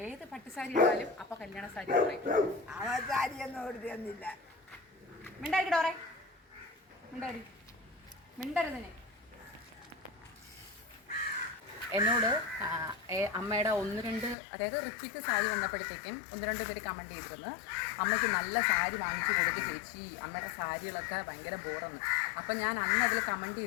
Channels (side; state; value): right; drops out; at 14.4 s